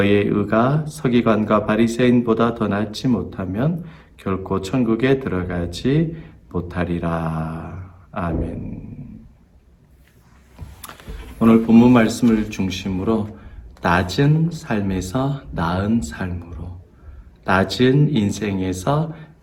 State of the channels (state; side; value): identical; both; correlation 1.00